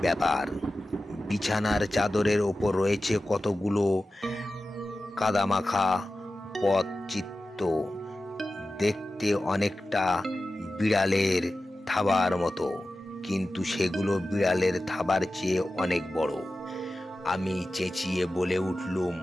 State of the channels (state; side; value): normal; both; correlation 0.94